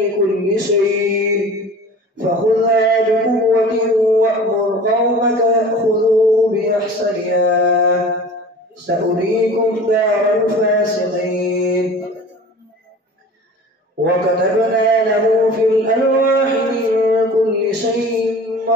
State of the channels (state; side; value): normal; both; correlation 0.40